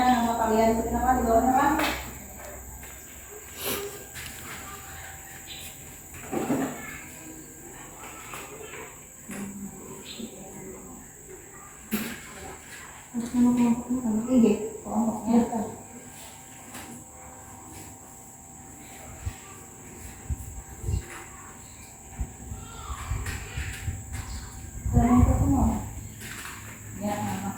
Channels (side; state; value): both; identical; correlation 1.00